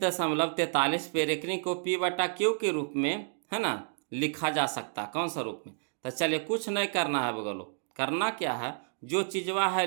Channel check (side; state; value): left; silent; digital silence